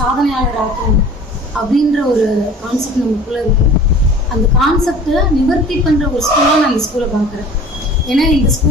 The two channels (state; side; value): normal; both; correlation 0.45